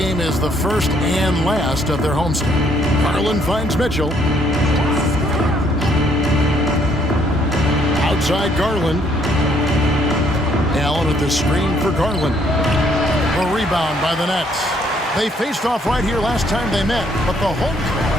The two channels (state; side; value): normal; both; correlation 0.67